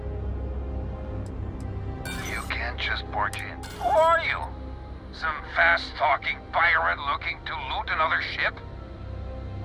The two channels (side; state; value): both; identical; correlation 1.00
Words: You can't just barge in. Who are you? Some fast-talking pirate looking to loot another ship?